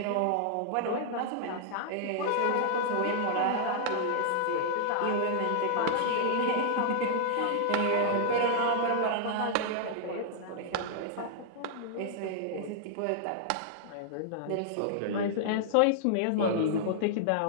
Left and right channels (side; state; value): both; different; correlation -0.01